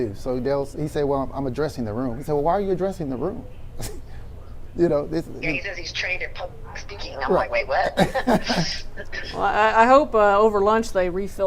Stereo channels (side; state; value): both; identical; correlation 1.00